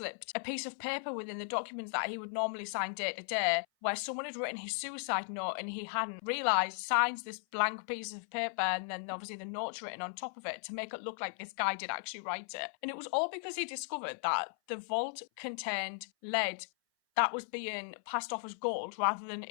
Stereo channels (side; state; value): right; silent; 53 dB below the other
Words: a piece of paper within the documents that he would normally sign day to day where someone had written his suicide note and he hadn't realised, signs this blank piece of paper and then obviously the note's written on top of it to make it look like this guy did actually write it. And it was all because he discovered that the vault contained lead that was being passed off as gold rather than